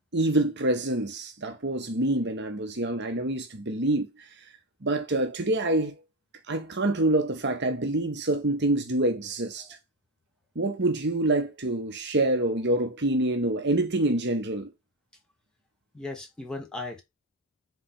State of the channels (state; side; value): normal; both; correlation 0.11